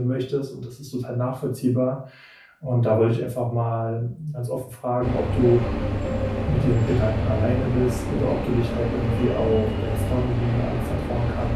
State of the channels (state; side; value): identical; both; correlation 1.00